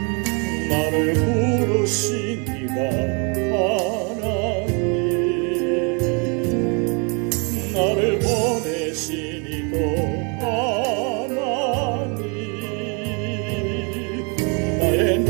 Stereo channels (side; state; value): left; quieter; 34.3 dB